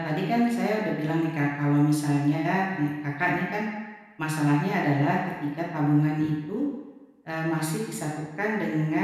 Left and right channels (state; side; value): identical; both; correlation 1.00